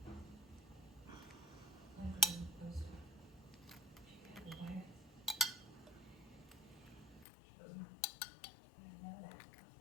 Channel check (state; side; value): drops out; right; at 7.2 s